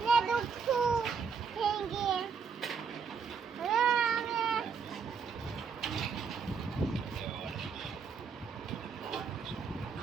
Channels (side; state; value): left; quieter; 5.9 dB